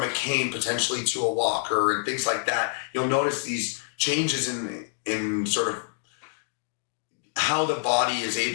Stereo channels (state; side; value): silent; right; digital silence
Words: a cane potentially to a walker and things like that. You'll notice these changes in sort of how the body is